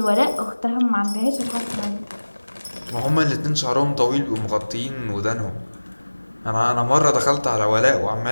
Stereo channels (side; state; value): both; inverted; correlation -1.00